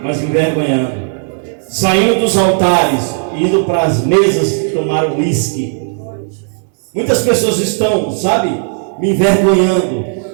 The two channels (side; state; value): left; silent; 59 dB below the other